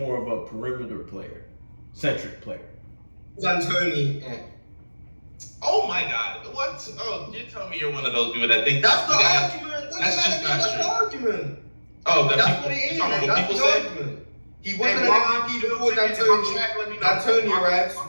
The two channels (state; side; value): inverted; both; correlation -1.00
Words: of a perimeter player, centric player. D'Antoni. Oh my God! What? Oh, you tell me you're one of those people that think that's the argument. That's just not true. That's the argument. Oh, that's what it is. That's the argument. He wasn't an MVP before D'Antoni arrives.